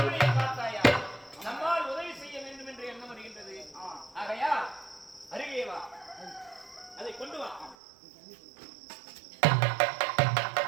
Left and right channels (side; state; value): left; drops out; at 7.8 s